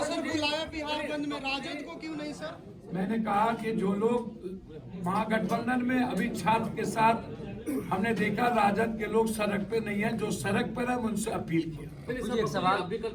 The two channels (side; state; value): both; identical; correlation 1.00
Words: सर बुलाया बिहार बंद में, राजद को क्यों नहीं सर? मैंने कहा कि जो लोग महागठबंधन में अभी छात्र के साथ हमने देखा, राजद के लोग सड़क पे नहीं है, जो सड़क पर है उनसे अपील किया। एक सवाल, आप भी कल